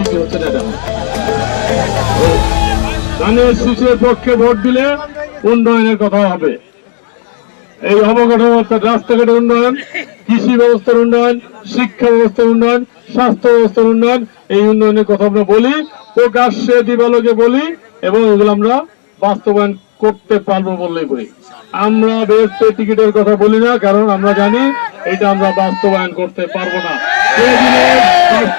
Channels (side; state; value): right; silent; digital silence